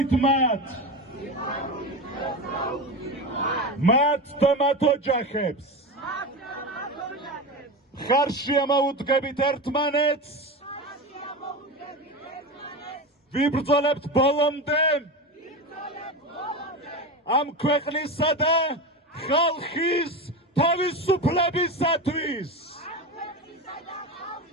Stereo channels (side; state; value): both; normal; correlation 0.22